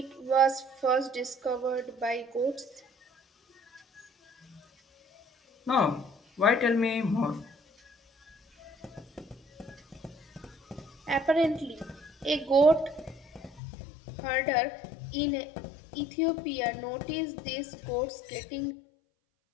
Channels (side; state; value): right; drops out; at 13.6 s